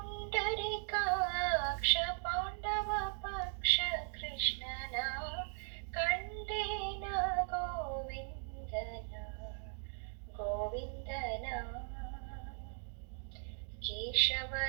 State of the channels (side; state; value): left; silent; 52 dB below the other